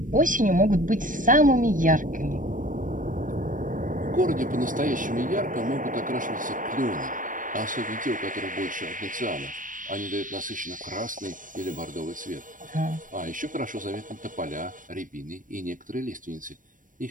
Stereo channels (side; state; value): left; late; 0.38 ms